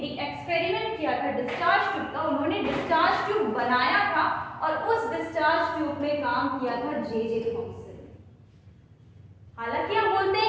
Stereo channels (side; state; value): both; identical; correlation 1.00